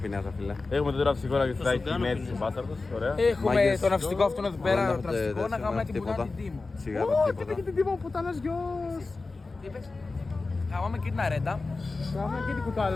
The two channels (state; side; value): quieter; right; 3.7 dB